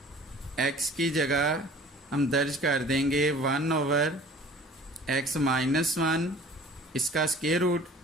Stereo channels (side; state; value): both; normal; correlation 0.48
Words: x की जगह हम दर्ज कर देंगे 1 ओवर एक्स माइनस 1, इसका स्क्वायर रूट,